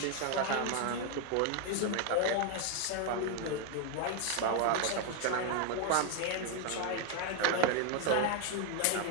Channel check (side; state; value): both; different; correlation 0.00